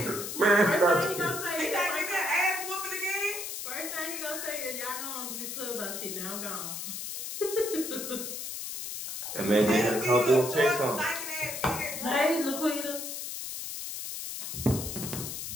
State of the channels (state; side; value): noise; left; hiss, 6 dB below the sound